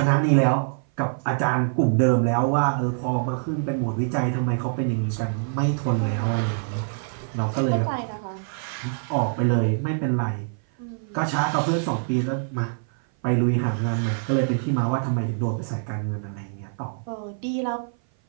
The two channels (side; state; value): left; silent; 56 dB below the other